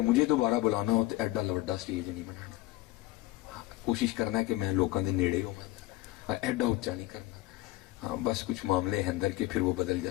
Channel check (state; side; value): quieter; right; 18.2 dB